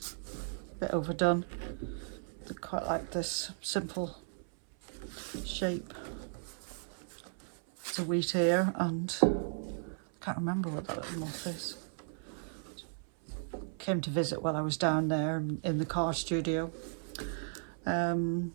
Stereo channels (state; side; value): silent; left; 54 dB below the other